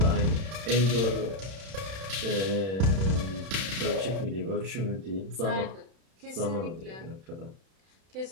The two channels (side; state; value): left; late; 31 ms